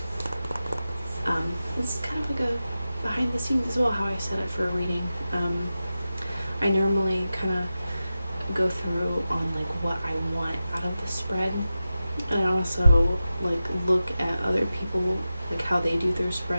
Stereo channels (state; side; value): inverted; both; correlation -0.93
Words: It's kind of like a behind the scenes as well, how I set it for a reading. I normally kind of go through on what I want out of the spread, and I also look at other people, how they do their